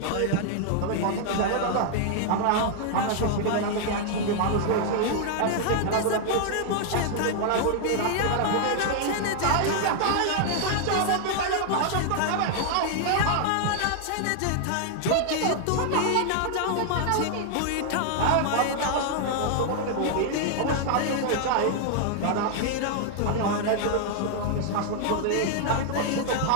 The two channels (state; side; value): different; both; correlation 0.00